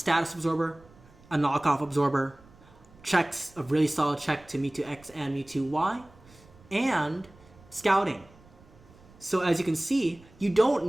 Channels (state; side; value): noise; right; rumble, 26 dB below the sound